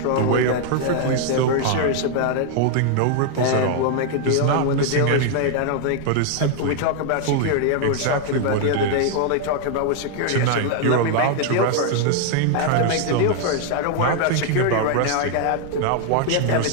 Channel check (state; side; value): different; both; correlation 0.00